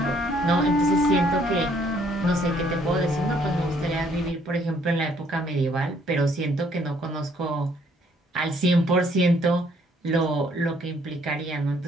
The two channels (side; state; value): both; normal; correlation 0.65